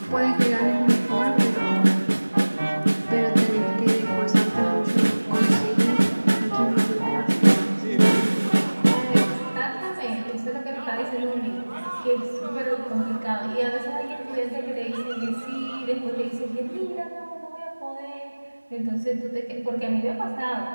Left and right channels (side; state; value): both; inverted; correlation -1.00